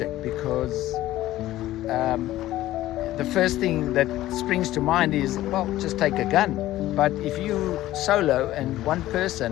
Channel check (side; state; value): right; quieter; 15.0 dB